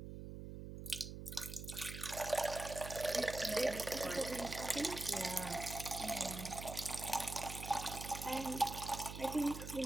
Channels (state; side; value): noise; right; hum, 8 dB below the sound